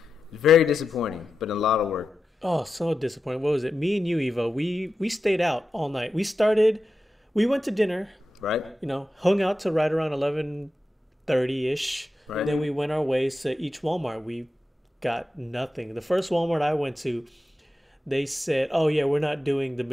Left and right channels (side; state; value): both; normal; correlation 0.91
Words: It's very disappointing, but a lot of work. Oh, so disappointing. What was it? Me and you, Evo, we stayed out all night. We went to dinner, Right? hung out to right around 11:30-ish. Right. Then we went our ways to each Walmart. We got nothing. The first Walmart I went to, they said, oh yeah, we're not doing the